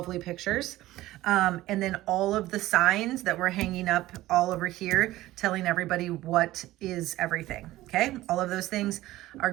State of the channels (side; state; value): left; quieter; 16.4 dB